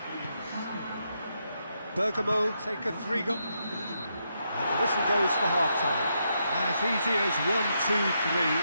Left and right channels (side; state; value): both; inverted; correlation -0.80